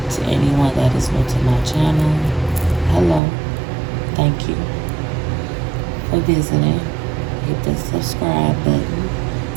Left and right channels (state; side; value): drops out; left; at 3.2 s